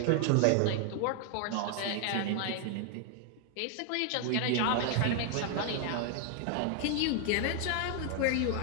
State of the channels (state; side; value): different; both; correlation 0.00